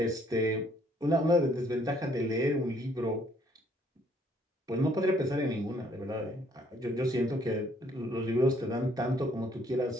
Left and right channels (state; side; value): normal; both; correlation 0.65